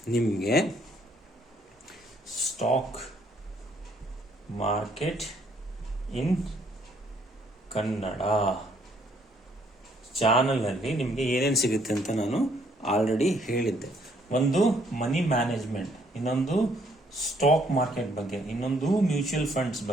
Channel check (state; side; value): normal; both; correlation 0.67